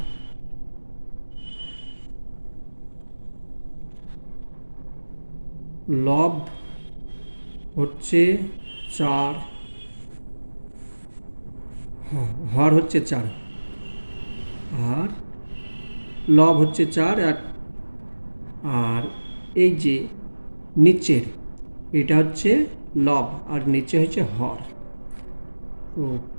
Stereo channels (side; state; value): both; inverted; correlation -1.00